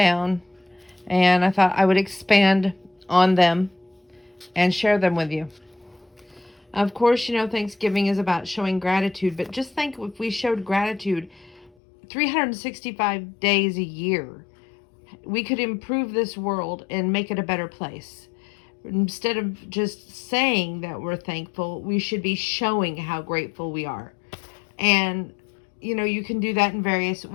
And I thought I would expand on them and share them with you. Of course, Thanksgiving is about showing gratitude. But just think if we showed gratitude 365 days a year, we could improve this world and make it a better place. Instead of just saying that we're thankful, we should be showing how grateful we are. And, you can do that in various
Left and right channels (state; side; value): drops out; right; at 11.7 s